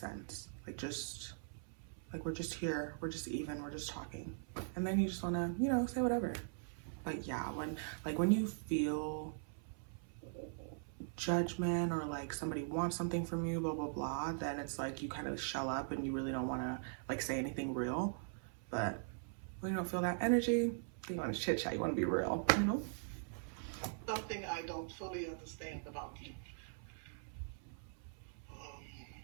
sense. Like we're just here, we're just even, we're just talking. And then you just wanna, say whatever. But yeah, when you feel judgment or like somebody wants something from you, blah, blah, blah, then it's like you kind of shell up and you really don't want to like say anything real. But when you don't feel that energy, you want to chit chat, you want to be real, Something I don't fully understand about you.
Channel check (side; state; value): left; silent; 50 dB below the other